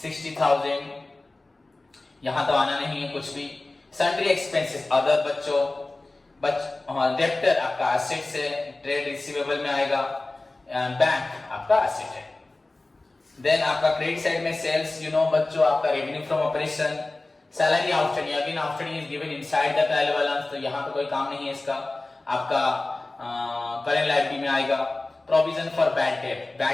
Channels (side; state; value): right; quieter; 3.0 dB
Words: यहां तो आना नहीं है कुछ भी. सन्ड्री एक्सपेंसेस अदर बच्चों, डेप्टर आपका एसेट से, ट्रेड रिसीवेबल में आएगा, बैंक आपका एसेट है. देन आपका क्रेडिट साइड में सेल्स यू नो बच्चों आपका revenue from operation. Salary outstanding, again outstanding is given inside the trial balance, तो यहां पे कोई काम नहीं है इसका. आपका करेंट लायबिलिटी में आएगा. Provision for bad